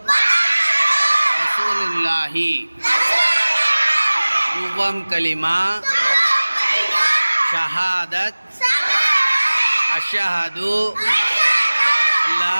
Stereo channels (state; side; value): inverted; both; correlation -1.00